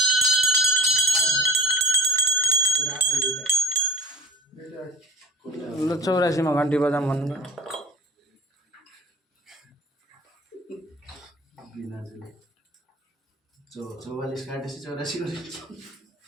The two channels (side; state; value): both; normal; correlation 0.46